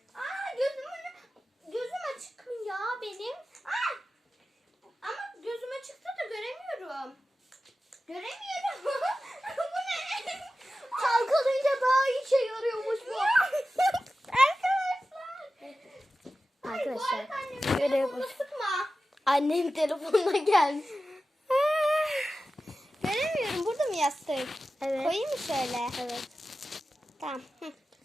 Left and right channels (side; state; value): both; normal; correlation 0.94